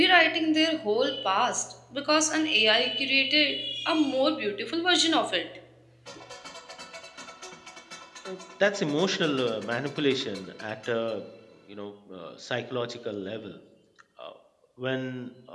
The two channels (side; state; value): both; identical; correlation 1.00